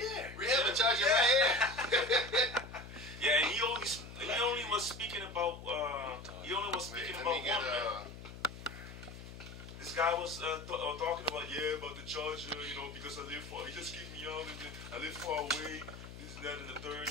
We have a charger right here. Yeah, and he only was speaking about one, man. This guy was talking about about the charger, because I live far. He just kicked me out, and I live far away. This and that and the third.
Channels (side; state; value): left; noise; hum, 13 dB below the sound